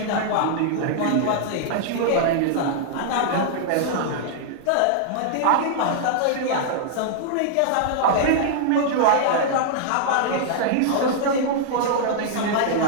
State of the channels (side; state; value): both; different; correlation -0.01